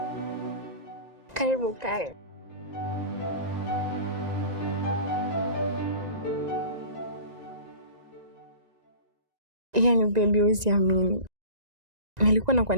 Karibu kae. Yaani baby, usiamini. Nilikuwa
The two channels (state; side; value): late; left; 1.9 ms